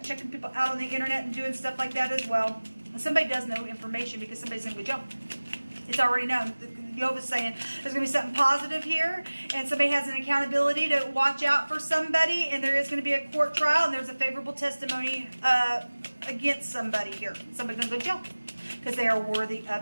checking people out on the internet and doing stuff like that as well. Somebody does know information because somebody's going to go jump. It's already known. Jehovah's saying there's going to be something positive here, and somebody has an accountability to watch out for somebody, and there is going to be a court trial, and there's a favorable testimony against somebody here. Somebody's going to go jail because they are worthy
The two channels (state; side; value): inverted; both; correlation -1.00